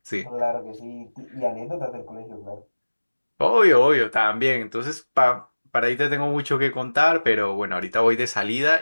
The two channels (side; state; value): both; inverted; correlation -1.00